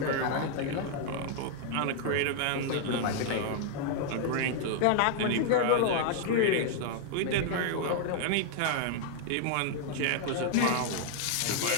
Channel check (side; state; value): both; different; correlation 0.00